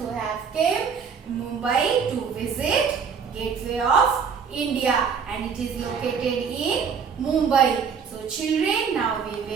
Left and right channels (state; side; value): quieter; left; 6.4 dB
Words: have came Mumbai to visit Gateway of India, and it is located in Mumbai. So children, now we